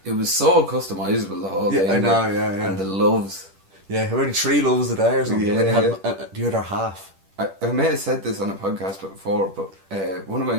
It was so customisable, the whole thing. Yeah, I know, yeah. And the loves. Yeah, only 3 loves a day or something. Yeah, and you had the other half. I may have said this on a podcast before, but one of my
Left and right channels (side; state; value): left; late; 10 ms